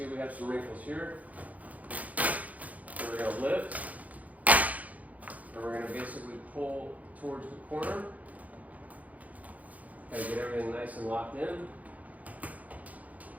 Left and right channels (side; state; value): left; late; 0.074 ms